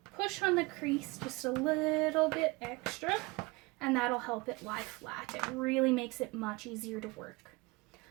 push on the crease just a little bit extra, and that'll help it lie flat. It really makes it much easier to work.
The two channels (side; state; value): left; quieter; 24.3 dB